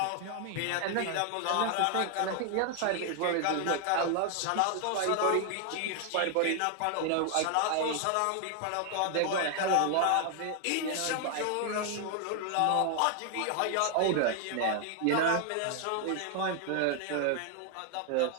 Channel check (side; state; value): both; different; correlation 0.00